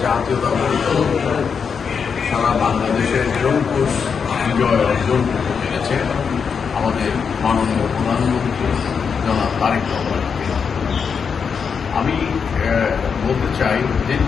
জাতীয়তাবাদী দল সারা বাংলাদেশের জনপুষ বিজয় অর্জন করতে পেরেছে আমাদের মাননীয় প্রধানমন্ত্রী জনাব তারেক রহমান। আমি বলতে চাই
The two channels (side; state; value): right; quieter; 6.2 dB